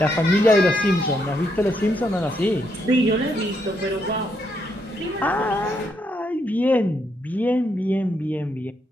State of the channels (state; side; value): normal; both; correlation 0.77